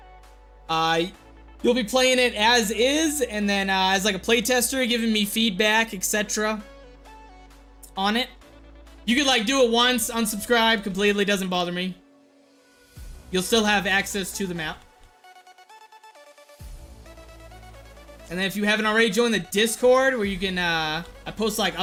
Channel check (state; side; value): identical; both; correlation 1.00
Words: You'll be playing it as is, and then as like a playtester, giving me feedback, etc. on it. You could like do it once, unsubscribe completely, doesn't bother me. You'll still have access to the map. And then if you haven't already joined the Discord, where you can, I post like